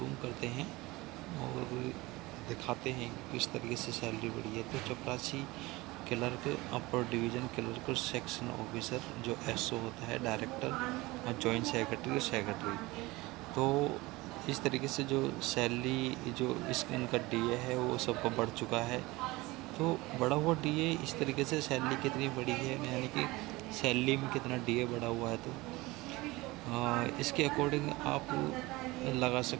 करते हैं और दिखाते हैं कि किस तरीके से सैलरी बढ़ी है। तो चपरासी क्लर्क, अपर डिवीज़न क्लर्क, सेक्शन ऑफिसर जो एसओ होता है, डायरेक्टर और जॉइंट सेक्रेटरी और सेक्रेटरी। तो इस तरीके से जो सैलरी जो इनका डीए है वो सबका बढ़ चुका है। तो बढ़ा हुआ डीए इस तरीके से सैलरी कितनी बढ़ी है, यानी कि सैलरी में कितना डीए बढ़ा हुआ है, तो इसके अकॉर्डिंग आप लगा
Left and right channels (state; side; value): quieter; left; 21.3 dB